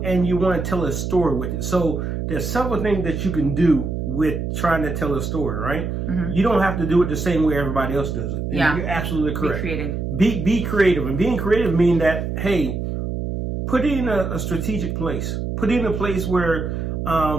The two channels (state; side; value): noise; right; hum, 3 dB below the sound